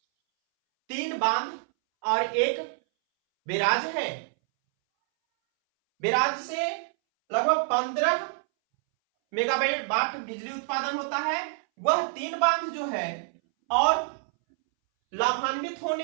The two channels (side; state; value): left; silent; 60 dB below the other